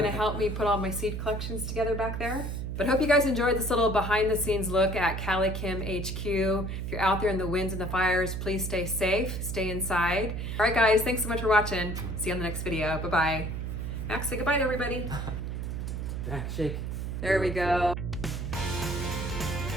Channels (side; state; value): right; noise; hum, 4 dB below the sound